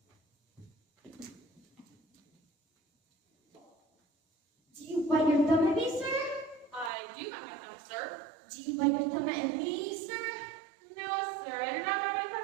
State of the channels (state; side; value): drops out; left; at 6.9 s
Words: Do you bite your thumb at me, sir? I do bite my thumb, sir. Do you bite your thumb at me, sir? No, sir. I do not bite my